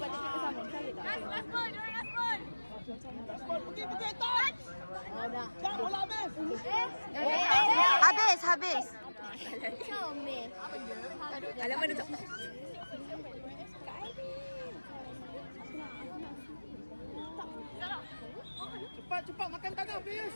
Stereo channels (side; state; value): both; inverted; correlation -1.00